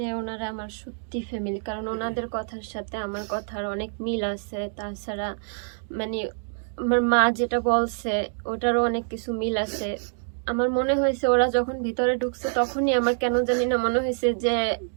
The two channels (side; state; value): left; silent; digital silence